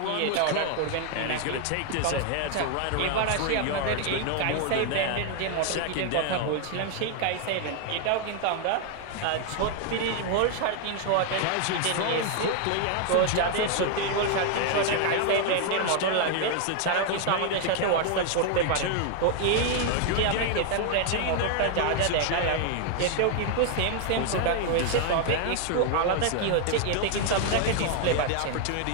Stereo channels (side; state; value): both; different; correlation 0.00